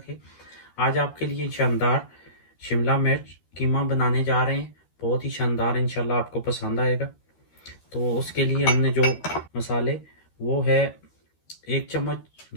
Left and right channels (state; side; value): late; right; 13 ms